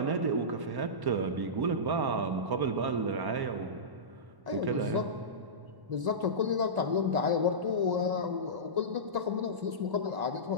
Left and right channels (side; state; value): left; late; 1.1 ms